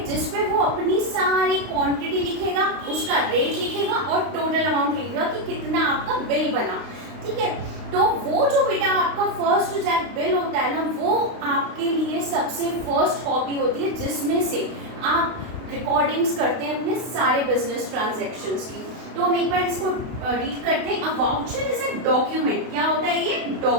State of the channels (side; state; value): left; late; 32 ms